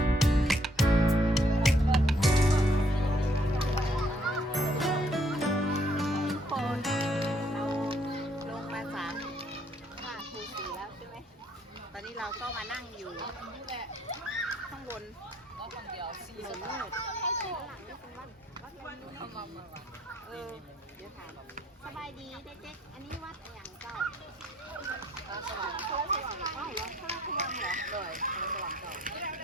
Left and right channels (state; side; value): normal; both; correlation 0.66